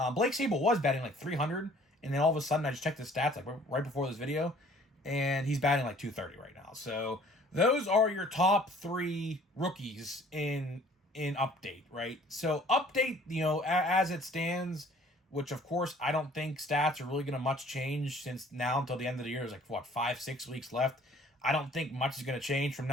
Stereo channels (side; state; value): both; normal; correlation 0.54